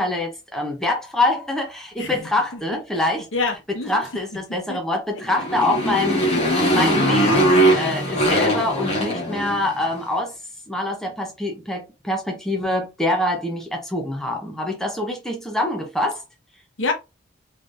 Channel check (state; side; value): normal; both; correlation 0.40